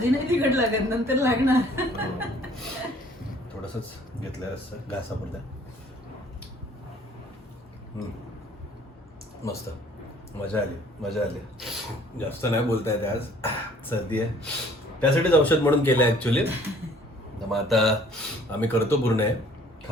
नाही तिखट लागत, नंतर लागणार. थोडंसंच घेतलं असतं घासापुरतं. मस्त, मजा आली. जास्त नाही बोलता येते आज, सर्दी आहे, त्यासाठीच औषध म्हणून केलं आहे ॲक्च्युली. मग आता आम्ही करतो पूर्ण आहे,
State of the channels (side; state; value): both; normal; correlation 0.56